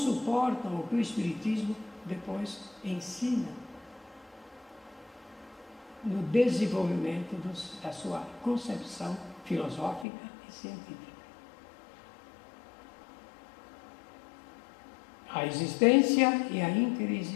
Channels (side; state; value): right; drops out; at 10.1 s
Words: o que o Espiritismo depois ensina no desenvolvimento da sua concepção filosófica e científica? A existência e a